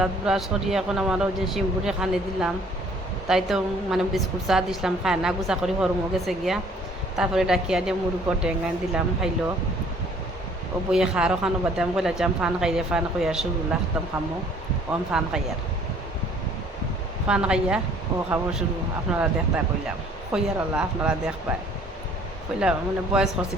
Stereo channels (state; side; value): normal; both; correlation 0.58